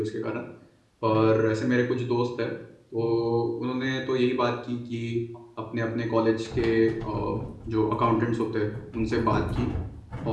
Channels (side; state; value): both; identical; correlation 1.00